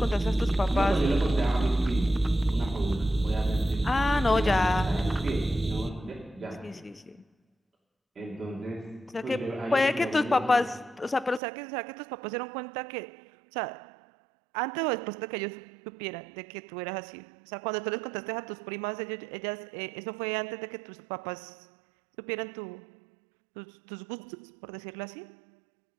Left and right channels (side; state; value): left; drops out; at 11.4 s